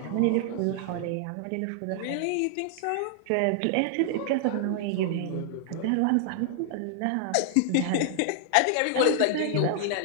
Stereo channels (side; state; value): both; different; correlation -0.01